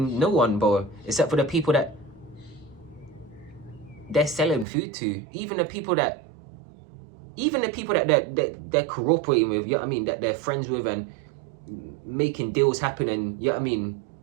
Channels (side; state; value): left; drops out; at 4.7 s